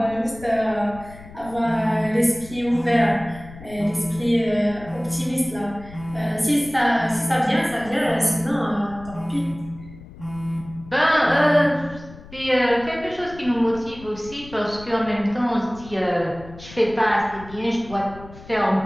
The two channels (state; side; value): noise; left; rumble, 18 dB below the sound